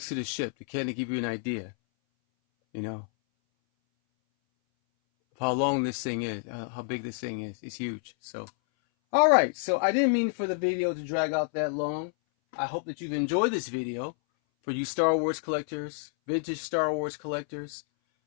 to the ship to kind of give you an idea, you know, of how long this thing is, how big this thing is. It's huge. So, all right. So I didn't mean for the video to drag out that long. I hope that you've enjoyed this video. For you Star Wars collectors, vintage Star Wars collectors,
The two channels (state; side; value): silent; right; 58 dB below the other